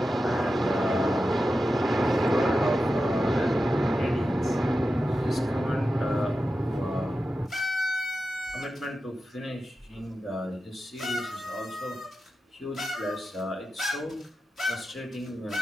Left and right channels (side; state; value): both; normal; correlation 0.91